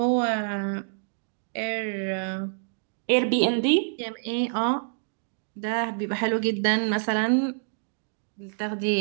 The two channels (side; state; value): left; silent; digital silence